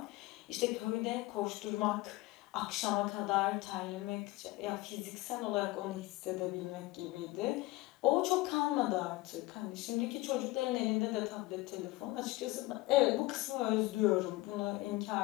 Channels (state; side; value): quieter; right; 20.2 dB